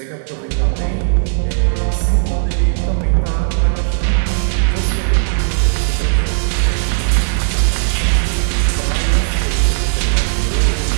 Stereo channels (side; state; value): left; silent; digital silence